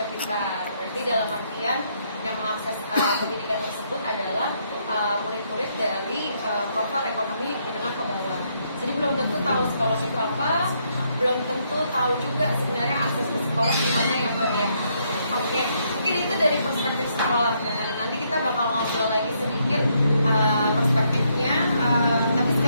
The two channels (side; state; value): both; inverted; correlation -0.74